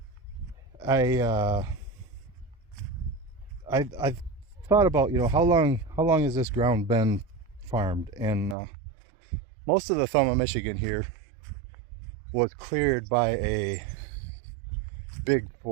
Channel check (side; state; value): left; drops out; at 8.6 s